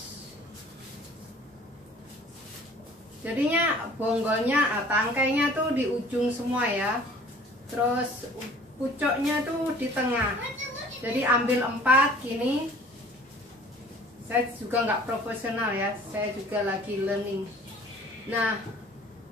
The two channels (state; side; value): normal; both; correlation 0.50